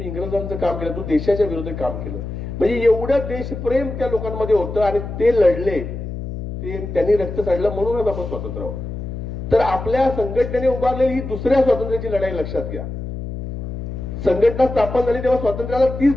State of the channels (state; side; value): noise; left; hum, 7 dB below the sound